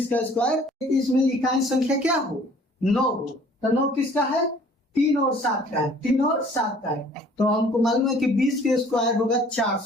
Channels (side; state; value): both; normal; correlation 0.54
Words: का स्क्वायर, इसमें इकाई संख्या क्या हो? 9 हो। तो 9 किसका है? 3 और 7 का है। 3 और 7 का है। तो हमको मालूम है कि 20 के स्क्वायर होगा